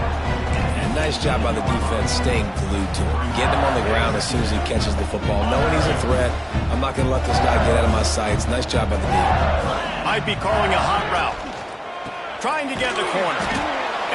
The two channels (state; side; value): identical; both; correlation 1.00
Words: And Nice job by the defense staying glued to him. Getting him on the ground as soon as he catches the football. Knowing he's a threat, I'm not going to let this guy get out of my sights. Nice job by the defense. Might be calling a hot route. Trying to get the corner.